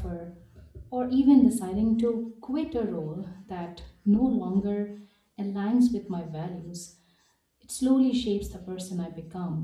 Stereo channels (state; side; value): identical; both; correlation 1.00